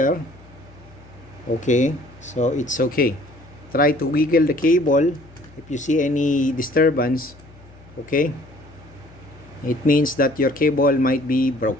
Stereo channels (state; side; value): noise; left; hum, 23 dB below the sound